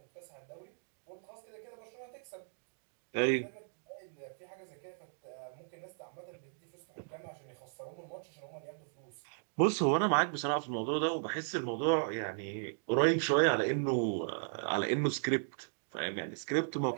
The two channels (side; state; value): left; silent; digital silence